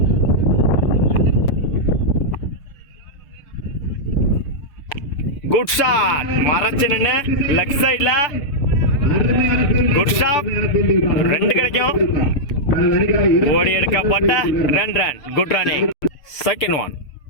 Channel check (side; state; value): right; late; 6.8 ms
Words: good shot, மறைச்சு நின்று லெக் சைட்ல குட் ஷாட். 2 கிடைக்கும். ஓடி எடுக்கப்பட்ட 2 run, good running. Second one